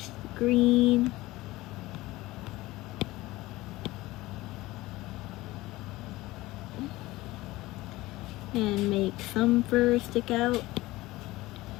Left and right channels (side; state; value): right; quieter; 18.9 dB